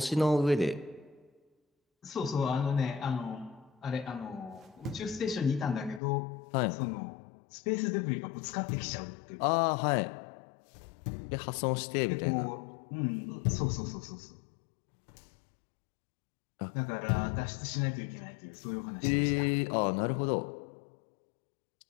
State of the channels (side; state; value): right; drops out; at 6.0 s